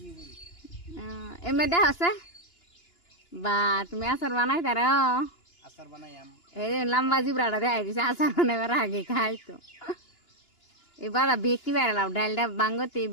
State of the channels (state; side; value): late; right; 2.9 ms